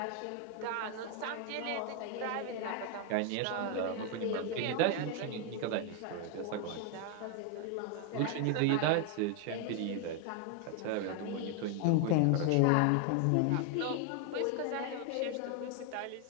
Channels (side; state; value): both; different; correlation 0.01